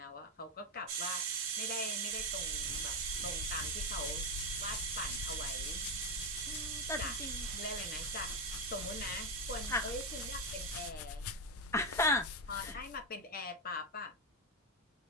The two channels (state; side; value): normal; both; correlation 0.08